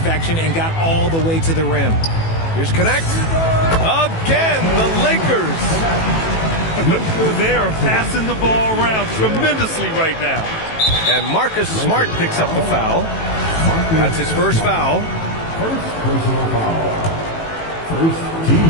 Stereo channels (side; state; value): right; late; 18 ms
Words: and got all the way to the rim. Here's Connect. Again, the Lakers. They are passing the ball around tremendously right now. And Marcus Smart picks up the foul. That's his first foul. First personal foul. First team